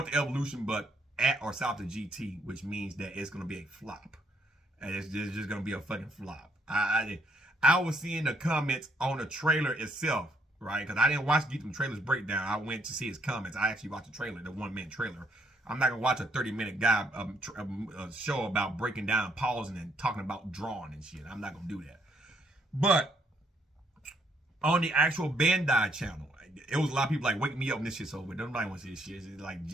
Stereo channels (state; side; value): normal; both; correlation 0.71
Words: of Evolution, but at or south of GT, which means that it's going to be a flop. And it's just going to be a fucking flop. I was seeing the comments on the trailer itself, right? Because I didn't watch the trailer's breakdown. I went to see his comments. I actually watched the trailer, the 1-minute trailer. I'm not going to watch a 30-minute guy show about breaking down, pausing, and talking about drawing and shit. I'm not going to do that. But on the actual Bandai channel, it was a lot of people like, wake me up when this shit's over. Nobody wants to see this shit. It's like